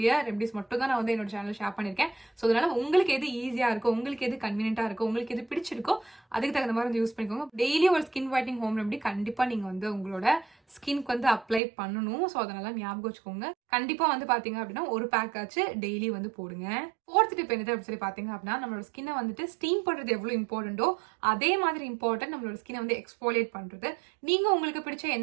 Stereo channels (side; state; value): left; drops out; at 11.6 s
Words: ரெமெடிஸ் மட்டும் தான் நான் வந்து என்னோட சேனல் ஷேர் பண்ணிருக்கேன். ஸோ அதனால உங்களுக்கு எது ஈஸியா இருக்கோ, உங்களுக்கு எது கன்வீனியன்டா இருக்கோ, உங்களுக்கு எது பிடிச்சிருக்கோ அதுக்கு தகுந்த மாதிரி வந்து யூஸ் பண்ணிக்கோங்க. டெய்லி ஒரு ஸ்கின் ஒயிட்னிங் ஹோம் ரெமெடி கண்டிப்பா நீங்க வந்து உங்களோட ஸ்கின்க்கு வந்து அப்ளை பண்ணணும். ஸோ அதனால ஞாபகம் வச்சுக்கோங்க. கண்டிப்பா வந்து பாத்தீங்க அப்படின்னா ஒரு பேக் ஆச்சு டெய்லி வந்து போடுங்க. ஃபோர்த் டிப் என்னது அப்படின்னு சொல்லி பாத்தீங்க அப்படின்னா, நம்மளோட ஸ்கின்னை வந்துட்டு ஸ்டீம் பண்றது எவ்வளவு இம்பார்ட்டன்டோ அதே மாதிரி இம்பார்ட்டன்ட் நம்மளோட ஸ்கின்னை வந்து எக்ஸ்போலியேட் பண்றது. நீங்க உங்களுக்கு பிடிச்ச